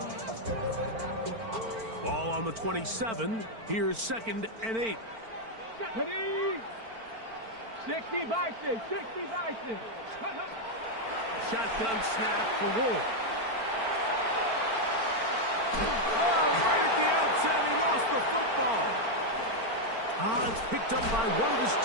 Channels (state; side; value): late; left; 4.4 ms